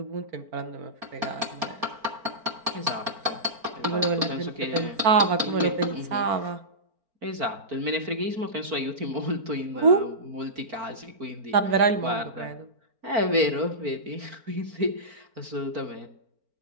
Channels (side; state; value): left; late; 4.4 ms